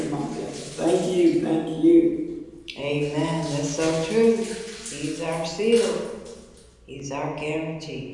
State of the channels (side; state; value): both; identical; correlation 1.00